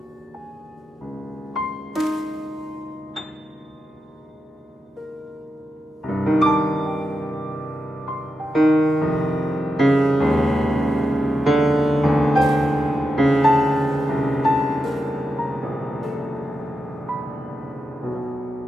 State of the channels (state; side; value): normal; both; correlation 0.88